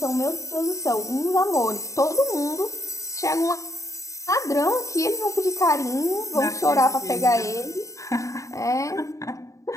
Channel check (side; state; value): right; late; 0.15 ms